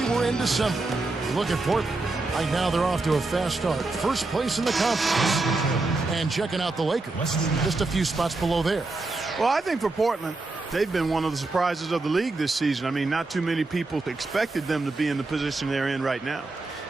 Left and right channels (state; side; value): quieter; left; 3.3 dB